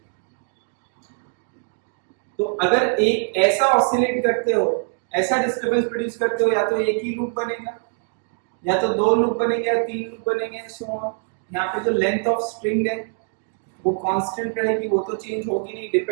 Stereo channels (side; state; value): left; silent; 57 dB below the other